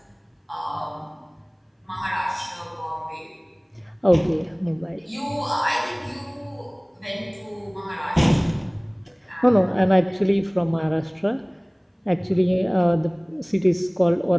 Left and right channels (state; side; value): identical; both; correlation 1.00